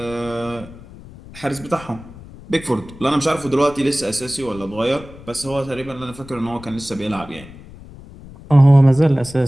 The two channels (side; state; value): left; noise; rumble, 18 dB below the sound